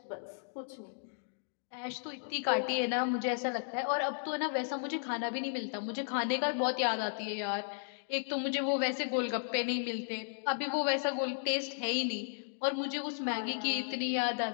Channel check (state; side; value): silent; right; digital silence